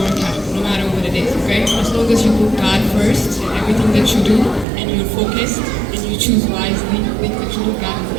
work out, no matter what it is. Okay? As long as you put God first in everything that you do, and you're focused, and you choose wisely, make the truth of God and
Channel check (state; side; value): drops out; left; at 4.7 s